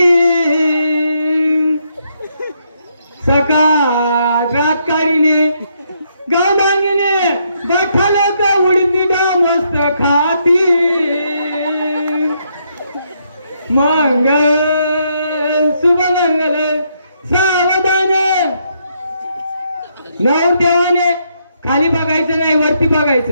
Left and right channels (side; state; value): both; inverted; correlation -0.76